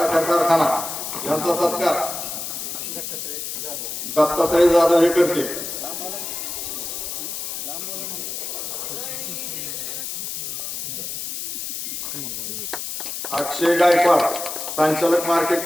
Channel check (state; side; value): noise; left; hiss, 5 dB below the sound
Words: कारखाना यांचा सत्कार दत्तात्रय जाधव हे करते. अक्षय गायकवाड संचालक